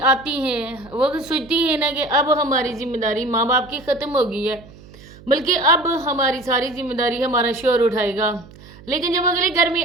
आती हैं, वो तो सोचती हैं ना कि अब हमारी जिम्मेदारी माँ बाप की ख़त्म हो गई है, बल्कि अब हमारी सारी जिम्मेदारी हमारा शोहर उठाएगा। लेकिन जब अगले घर में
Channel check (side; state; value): right; noise; hum, 21 dB below the sound